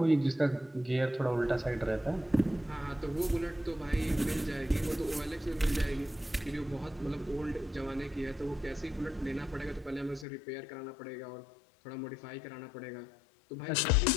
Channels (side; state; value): right; drops out; at 10.2 s